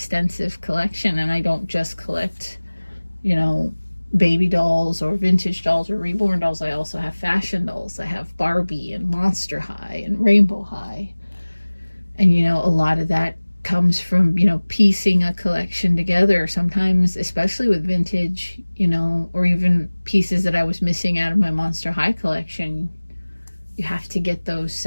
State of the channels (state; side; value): inverted; both; correlation -1.00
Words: collection, and I don't just collect, you know, baby dolls or vintage dolls or reborn dolls. I also have fashion dolls. I have Barbie and Monster High and Rainbow High. And, you know, a lot of that comes from, you know, piecing a collection together. Sometimes, especially with vintage, you know, or even pieces that I was missing out of my Monster High collection, you have to get those